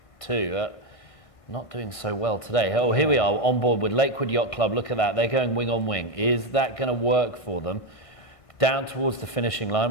too. Not doing so well today. Oh, here we are on board with Lakewood Yacht Club. Look at that. They're going wing on wing. Is that going to work for them? Down towards the finishing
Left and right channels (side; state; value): right; late; 1.6 ms